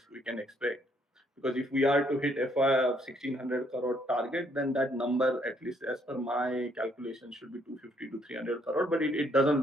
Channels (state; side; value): normal; both; correlation 0.68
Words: can expect. Because if we are to hit FY of 1600 crore target, then that number, at least as per my calculation, should be 250 to 300 crore. But it doesn't